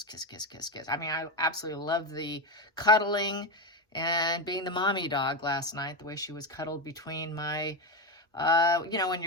kiss, kiss, kiss, kiss. I mean, I absolutely love the cuddling and being the mommy dog last night, the way she was cuddled between my, when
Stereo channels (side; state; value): both; normal; correlation 0.12